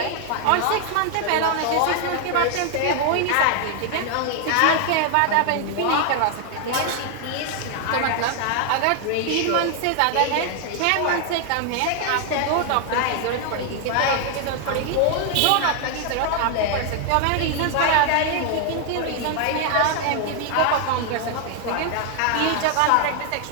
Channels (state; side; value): different; both; correlation 0.00